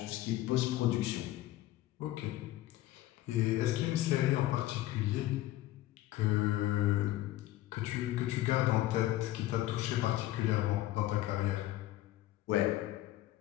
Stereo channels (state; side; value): quieter; right; 15.5 dB